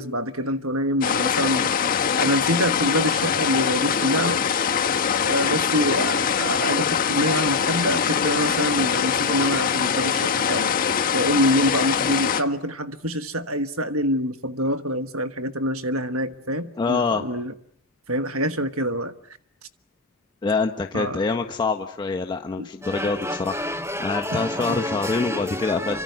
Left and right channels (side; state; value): right; quieter; 3.4 dB